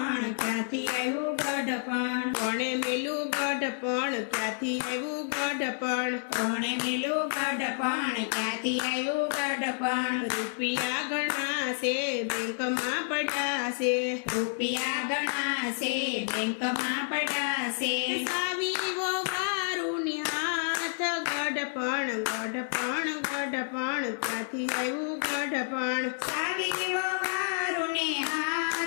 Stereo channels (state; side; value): silent; right; digital silence